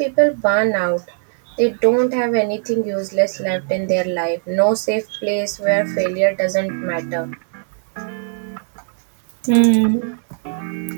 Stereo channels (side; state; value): left; silent; 65 dB below the other